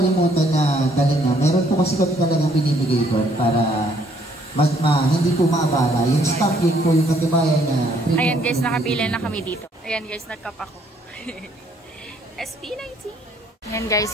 na galing na. Meron po kasi kami talagang binibigay doon para hindi po maabala. Yung stop, yun po yung katibayan na free. Ayan guys, nakapila na kami dito. Ayan guys, nagkap ako. SP19. Ayan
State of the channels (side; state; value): both; normal; correlation 0.66